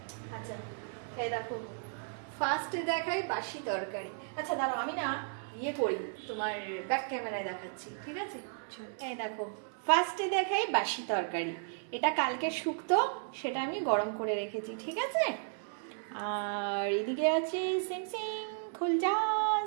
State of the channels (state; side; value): silent; left; digital silence